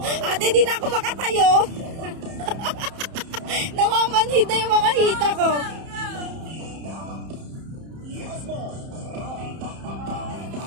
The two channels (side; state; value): left; late; 31 ms